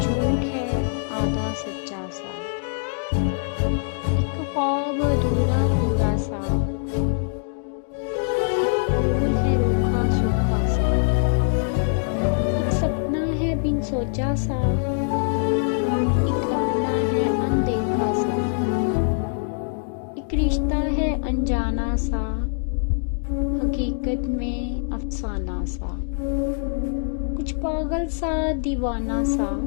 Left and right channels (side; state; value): right; silent; digital silence